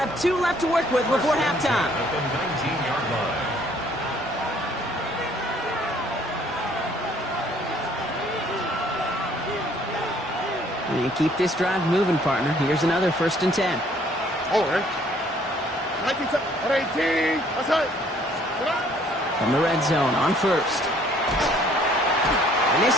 2 left to work with before halftime. At the 19-yard line. And keep this drive moving, partner. Here's another 1st and 10. All right. 18, outside. From the red zone on 1st. And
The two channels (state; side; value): normal; both; correlation 0.61